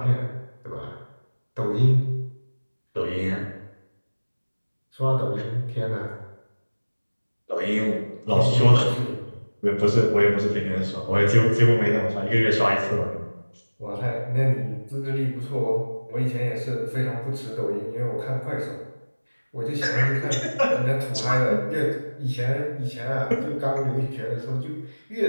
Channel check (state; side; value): inverted; both; correlation -1.00